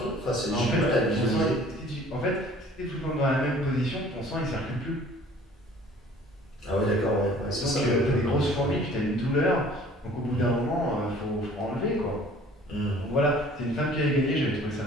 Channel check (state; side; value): normal; both; correlation 0.51